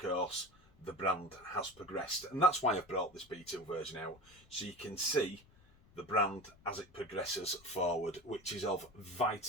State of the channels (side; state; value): left; noise; rumble, 27 dB below the sound